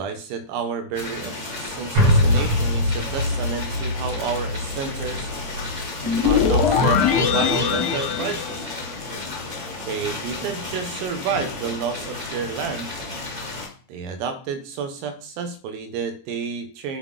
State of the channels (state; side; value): late; left; 22 ms